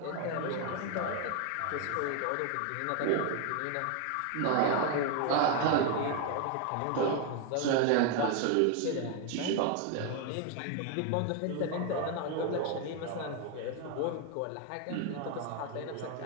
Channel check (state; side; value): different; both; correlation 0.01